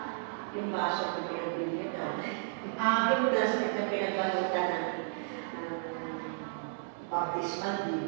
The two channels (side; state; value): left; silent; digital silence